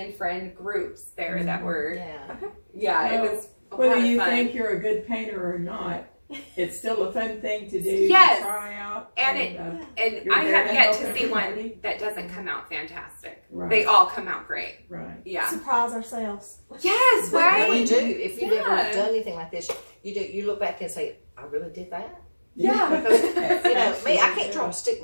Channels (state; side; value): inverted; both; correlation -1.00